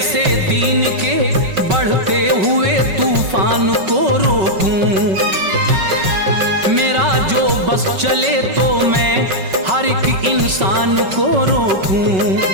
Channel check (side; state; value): left; late; 5.3 ms